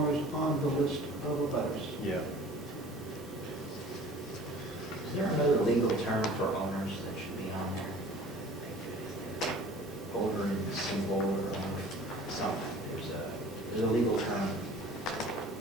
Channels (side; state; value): both; normal; correlation 0.46